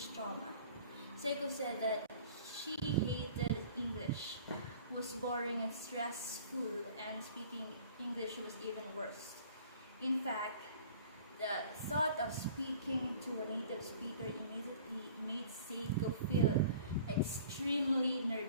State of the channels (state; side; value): inverted; both; correlation -0.48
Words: trauma. Seiko said that she hated English, was boring and stressful, and speaking English was even worse. In fact, the thought of speaking to a native speaker immediately made Seiko feel extremely